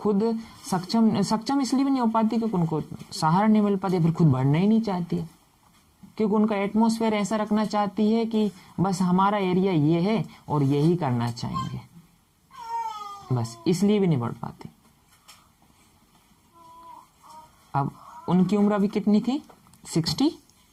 सक्षम इसलिए भी नहीं हो पाती क्योंकि उनको सहारा नहीं मिल पाती, फिर खुद बढ़ना ही नहीं चाहती है, क्योंकि उनका एटमॉस्फेयर ऐसा रखना चाहती है कि बस हमारा एरिया ये है और यही करना चाहेंगे, बस इसलिए भी नहीं बढ़ पाती। अब उनकी उम्र अभी कितनी थी, 63।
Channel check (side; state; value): both; identical; correlation 1.00